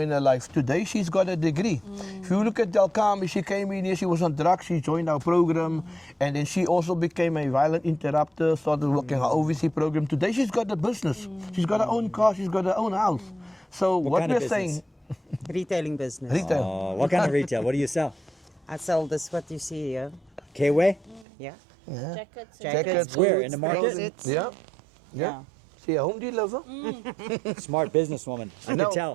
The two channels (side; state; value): left; drops out; at 21.2 s